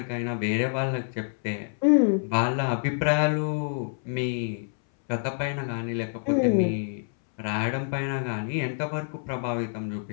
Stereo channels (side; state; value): right; silent; 59 dB below the other